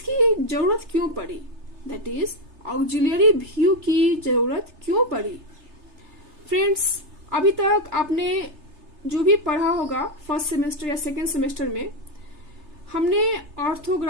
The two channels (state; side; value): late; left; 3.3 ms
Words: जरूरत क्यों पड़ी। दैट इज ऑक्सिलरी व्यू की जरूरत क्यों पड़ी। फ्रेंड्स, अभी तक आपने जो भी पढ़ा होगा फर्स्ट सेमेस्टर या सेकेंड सेमेस्टर में, हमने